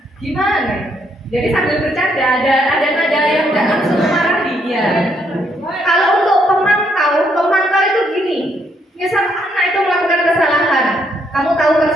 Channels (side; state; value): both; normal; correlation 0.73